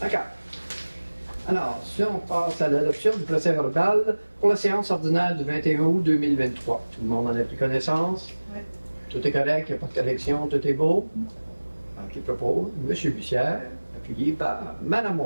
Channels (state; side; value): inverted; both; correlation -1.00